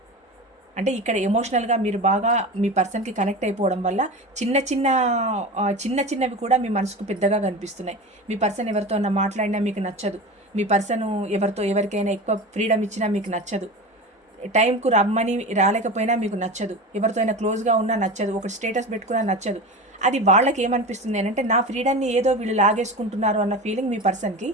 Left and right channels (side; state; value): both; normal; correlation 0.28